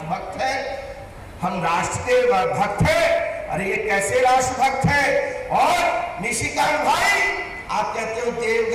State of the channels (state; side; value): identical; both; correlation 1.00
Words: हैं, हम राष्ट्र के भक्त हैं। अरे ये कैसे राष्ट्रभक्त है। और निशिकांत भाई, आप कहते हो